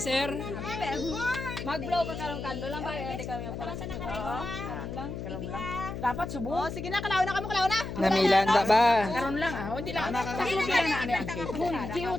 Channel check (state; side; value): noise; left; hum, 7 dB below the sound